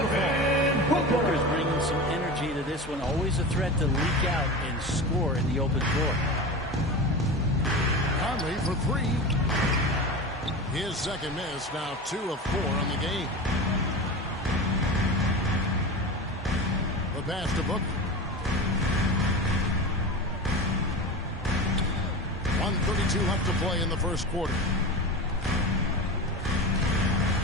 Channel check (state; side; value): normal; both; correlation 0.28